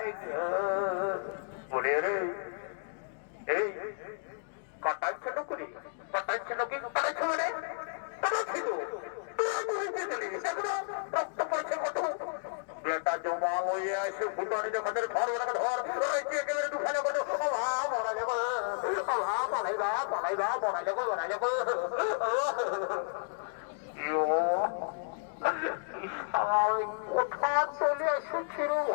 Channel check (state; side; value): silent; right; digital silence